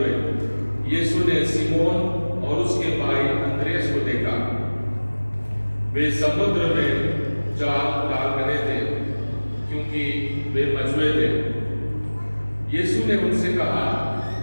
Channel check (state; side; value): inverted; both; correlation -1.00